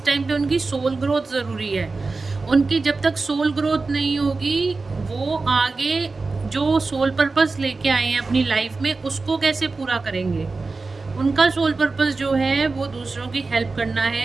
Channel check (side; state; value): left; quieter; 3.9 dB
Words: टाइम पे उनकी सोल ग्रोथ ज़रूरी है। उनकी जब तक सोल ग्रोथ नहीं होगी, वो आगे जो सोल पर्पस लेके आए हैं अपनी लाइफ में, उसको कैसे पूरा करेंगे। उनका सोल पर्पस जो है वो दूसरों की हेल्प करना